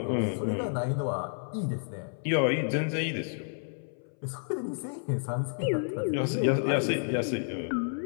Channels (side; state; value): right; silent; 58 dB below the other